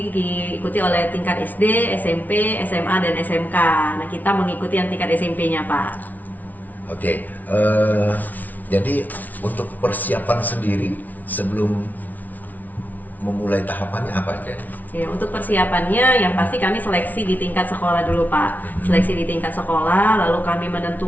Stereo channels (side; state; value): right; late; 0.078 ms